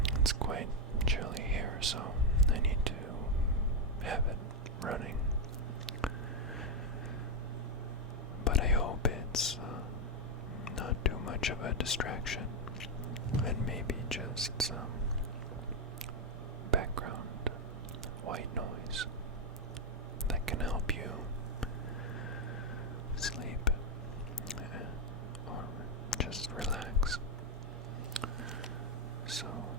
it's quite chilly here, so I need to have it running. But I hope it's not too much of a distraction, and maybe just some background white noise that can help you sleep or just relax. So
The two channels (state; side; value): normal; both; correlation 0.02